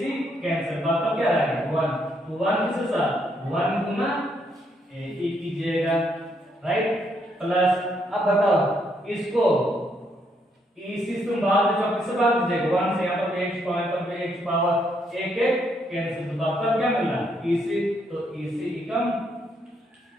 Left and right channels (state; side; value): normal; both; correlation 0.74